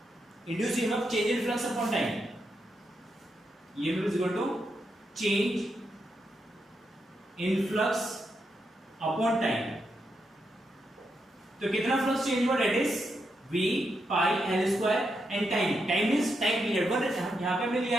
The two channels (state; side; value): normal; both; correlation 0.83